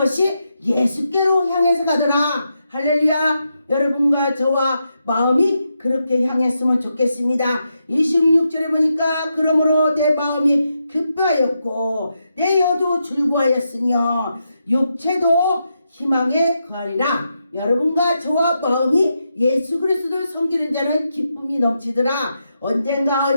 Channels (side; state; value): both; inverted; correlation -0.84